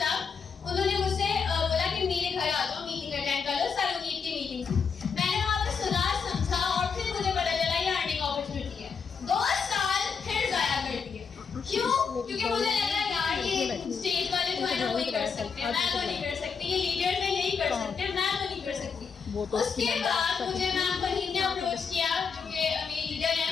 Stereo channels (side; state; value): right; quieter; 5.9 dB